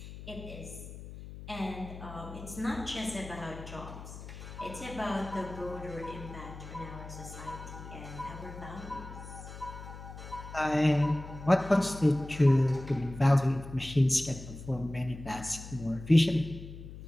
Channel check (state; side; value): noise; left; hum, 13 dB below the sound